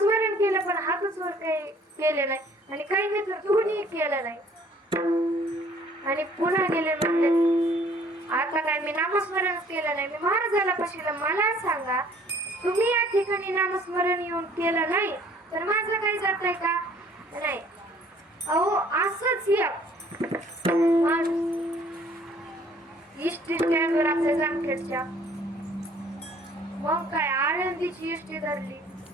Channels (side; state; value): both; normal; correlation 0.57